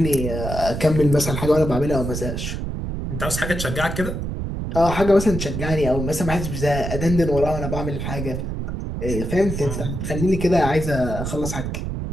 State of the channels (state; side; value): noise; right; rumble, 4 dB below the sound